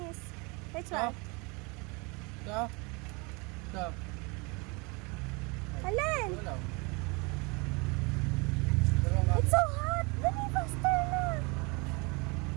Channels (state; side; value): quieter; left; 28.9 dB